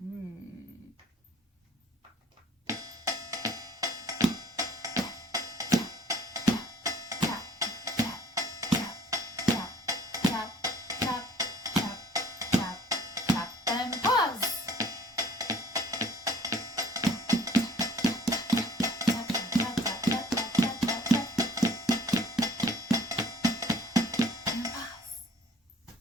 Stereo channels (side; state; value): both; normal; correlation 0.54